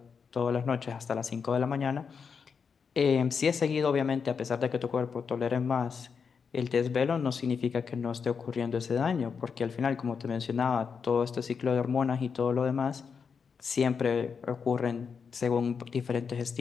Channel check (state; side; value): quieter; right; 6.0 dB